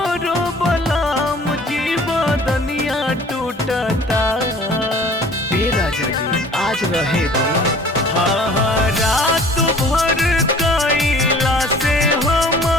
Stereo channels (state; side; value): normal; both; correlation 0.49